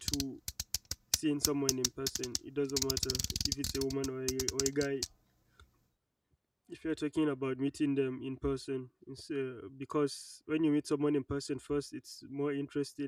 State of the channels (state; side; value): identical; both; correlation 1.00